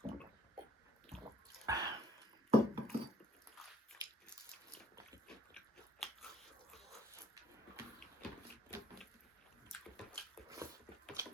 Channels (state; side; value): normal; both; correlation 0.61